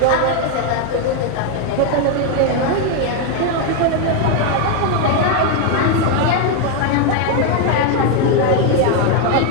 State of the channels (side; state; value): both; different; correlation 0.01